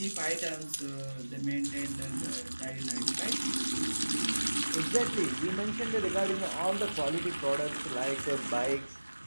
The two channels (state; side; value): inverted; both; correlation -1.00